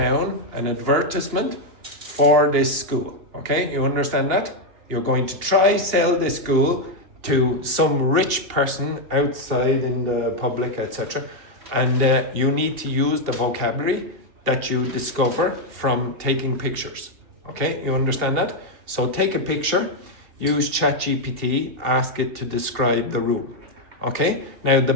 an advertisement for this school. Okay? You understand that? You're going to try sell this school to some rich person outside in the public, etc. And you need to use the vocabulary that you discover from taking pictures. Okay, you understand that? So take a picture, use ChatGPT, ask it to describe the room. Okay, now the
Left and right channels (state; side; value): late; left; 2.7 ms